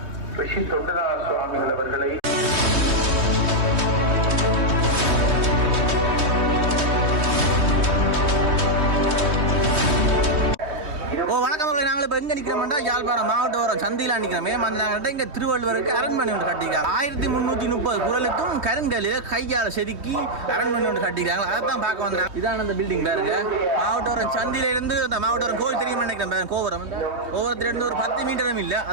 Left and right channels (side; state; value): left; late; 3.2 ms